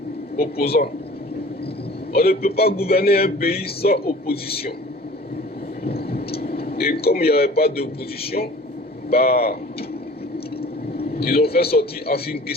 opposants. On ne peut pas gouverner un pays sans opposition. Et comme il n'y avait pas d'opposition, bah, ils ont fait sortir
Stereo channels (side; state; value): both; normal; correlation 0.46